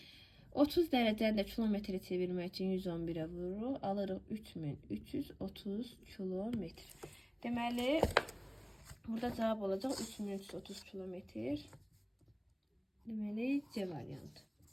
30 dərəcəni də kilometrə çevirmək üçün 111-ə vururuq. Alırıq 3330 kilometr. Deməli, burada cavab olacaq 3330 kilometr. Deməli, C variantı.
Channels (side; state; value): both; identical; correlation 1.00